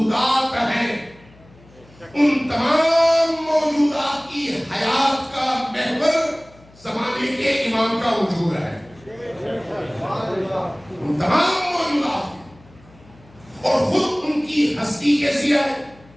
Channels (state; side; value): noise; left; hum, 26 dB below the sound